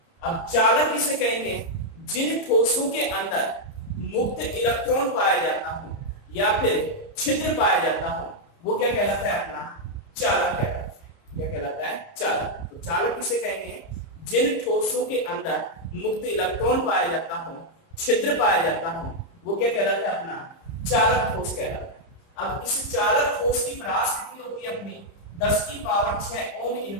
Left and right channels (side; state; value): right; late; 30 ms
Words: अब चालक किसे कहेंगे? जिन ठोसों के अंदर मुक्त इलेक्ट्रॉन पाया जाता हो या फिर छिद्र पाया जाता हो, वो क्या कहलाता है? अपना चालक कहलाता है। क्या कहलाता है? चालक। तो चालक किसे कहेंगे? जिन ठोसों के अंदर मुक्त इलेक्ट्रॉन पाया जाता हो, छिद्र पाया जाता हो, वो क्या कहलाता है? अपना चालक ठोस कहलाता है। अब इस चालक ठोस की परास कितनी होती है? अपनी 10 की power 6 ohm